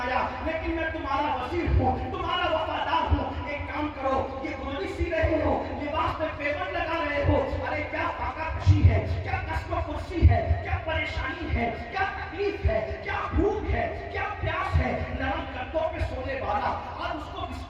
لیکن میں تمہارا وزیر ہوں، تمہارا وفادار ہوں. ایک کام کرو، یہ گلڑی سی رہے ہو، لباس میں پیون لگا رہے ہو، ارے کیا فاقہ کشی ہے، کیا قسم و کرسی ہے، کیا پریشانی ہے، کیا تکلیف ہے، کیا بھوک ہے، کیا پیاس ہے. نرم گدوں پہ سونے والا آج اس کو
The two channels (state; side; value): identical; both; correlation 1.00